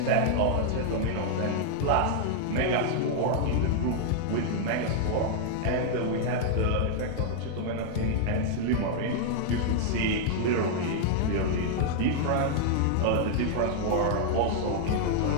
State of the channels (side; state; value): both; different; correlation -0.01